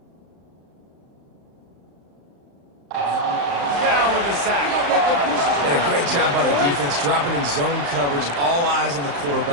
Down with the sack. And a great job by the defense, dropping in zone coverage, all eyes on the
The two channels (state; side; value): late; left; 35 ms